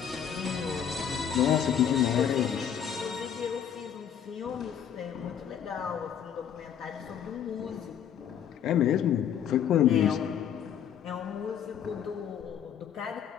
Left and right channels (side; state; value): right; quieter; 8.8 dB